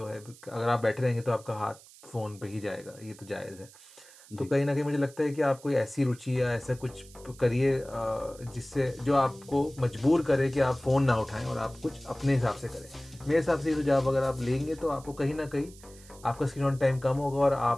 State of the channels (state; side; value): noise; right; hiss, 22 dB below the sound